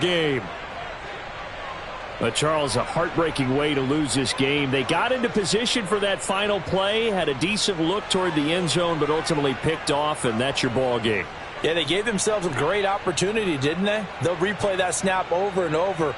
But Charles, a heartbreaking way to lose this game. They got into position for that final play, had a decent look toward the end zone, but ultimately picked off, and that's your ball game. Yeah, they gave themselves a great opportunity, didn't they? They'll replay that snap over and over,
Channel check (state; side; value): identical; both; correlation 1.00